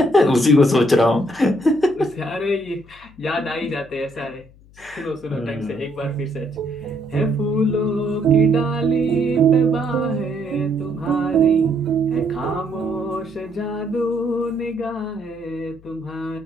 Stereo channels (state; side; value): noise; left; hum, 25 dB below the sound